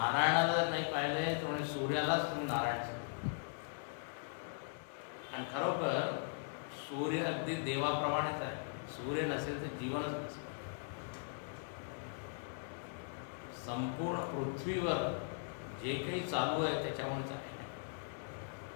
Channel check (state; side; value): silent; right; digital silence